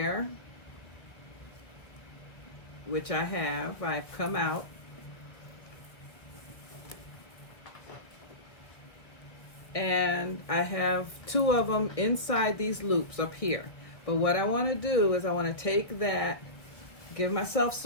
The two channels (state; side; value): late; right; 1.3 ms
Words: which I've come out, and I have 2 of them inside these loops up here. But what I want to do is I want to take that, give myself